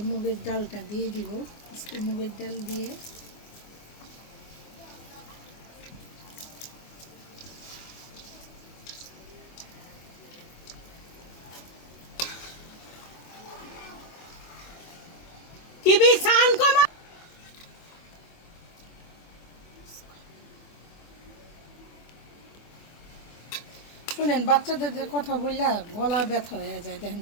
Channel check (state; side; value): late; right; 24 ms